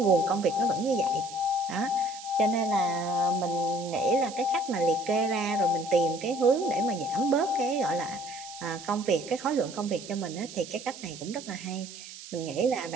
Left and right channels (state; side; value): noise; right; hiss, 14 dB below the sound